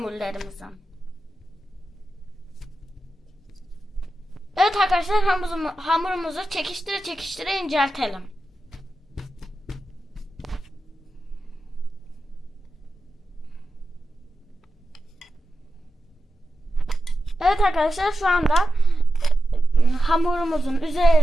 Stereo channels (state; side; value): normal; both; correlation 0.91